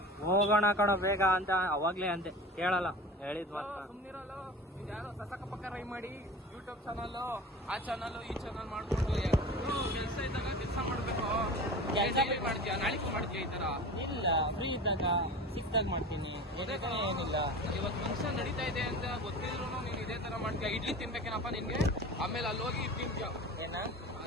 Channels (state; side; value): normal; both; correlation 0.35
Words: ಹೋಗೋಣ ಕಣೋ ಬೇಗ ಅಂತ ಅವಾಗ್ಲೇ ಅಂತೆ, ಕೇಳಲ್ಲ. ಹೇಳಿದ್ ಮಾತ್ರ ಸುಮ್ಮನಿರಲ್ಲ. ಯಾರೋ ಸಸಕ ಪಕ್ಕ ರೈ ಮಾಡಿ ಯೂಟ್ಯೂಬ್ ಚಾನಲ್, ಆ ಚಾನಲ್ ಈ ಚಾನಲ್ ಮಾಡ್ಕೊಂಡು ಕೆಲಸ ಇದ್ದಾಗ ಕೆಲಸ ಮಾಡ್ಬೇಕು. ಮಾಡ್ತೀಯ, ನಾಳೆಗೂ ಮಾಡ್ತೀಯ ಈ ತರ? ಇಲ್ಲ, ಫ್ರೀ ಇದ್ದಾಗ ಸಿಕ್ದಾಗ ಮಾಡ್ತೀನಿ. ಏನಿಲ್ಲ, ಇವತ್ತು ಫಂಕ್ಷನ್ ನಡೀತಾ ಇದೆ ಅಂತ ಗೊತ್ತಿದ್ರು ನೀನು ಇದೇ ತರ ಮಾಡ್ತೀಯ. ಇಡ್ಲಿ ತಿನ್ಬೇಕೇನಪ್ಪ ನಿನ್ಗೆ? ಆಮೇಲೆ ಅಲ್ಲಿ ಹೋಗಿ ತಿಂತೀಯ. ಏನ